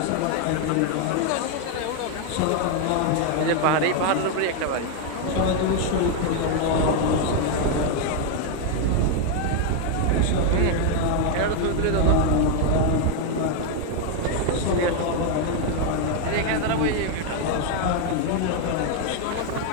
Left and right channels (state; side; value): different; both; correlation 0.01